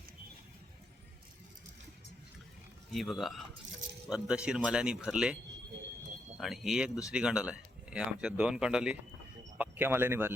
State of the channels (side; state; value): both; normal; correlation 0.79